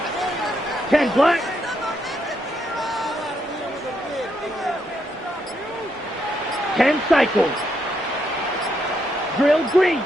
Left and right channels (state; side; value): normal; both; correlation 0.78